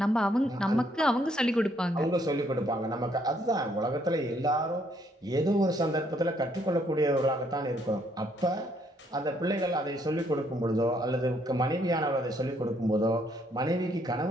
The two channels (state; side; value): normal; both; correlation 0.69